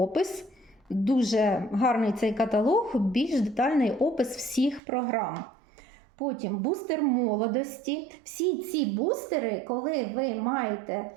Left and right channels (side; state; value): left; drops out; at 4.8 s